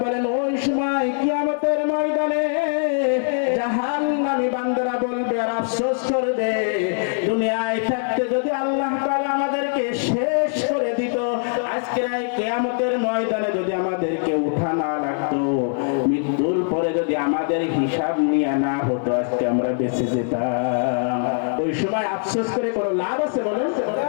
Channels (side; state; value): right; silent; 63 dB below the other